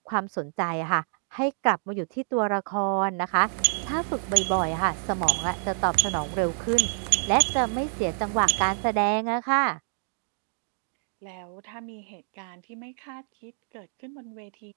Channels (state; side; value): silent; left; 60 dB below the other